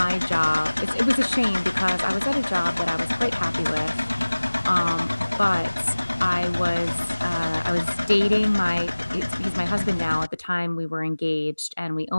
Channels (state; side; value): inverted; both; correlation -1.00